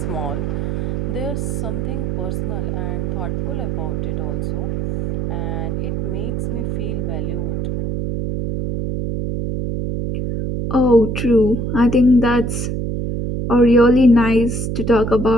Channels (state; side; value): noise; right; hum, 2 dB below the sound